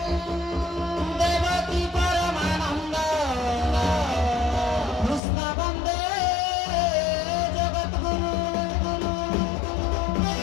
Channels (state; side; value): drops out; right; at 5.2 s